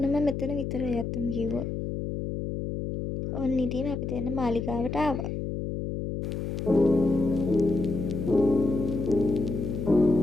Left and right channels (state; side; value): noise; left; hum, 4 dB below the sound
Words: මෙතන විතරයි ඇත්තම කිව්වොත්. ඔන්න ඉතින් අපි දැන් මාලිගාවට ආවා.